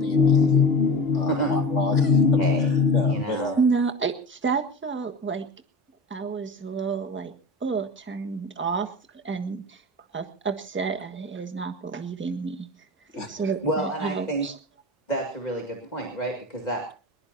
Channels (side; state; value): both; normal; correlation 0.31